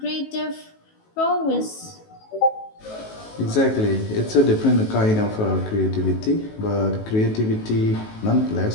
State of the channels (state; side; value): late; right; 19 ms